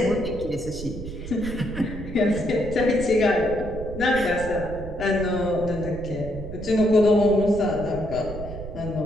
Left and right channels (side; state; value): right; noise; rumble, 10 dB below the sound